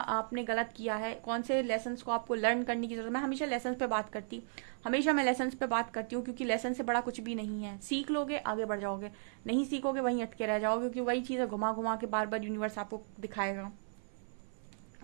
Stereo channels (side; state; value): left; silent; 54 dB below the other